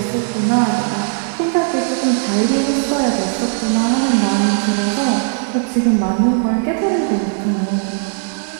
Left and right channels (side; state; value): left; silent; 57 dB below the other